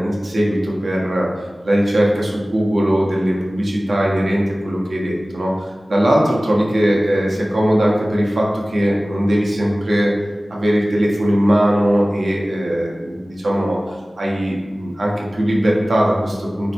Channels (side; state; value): both; normal; correlation 0.97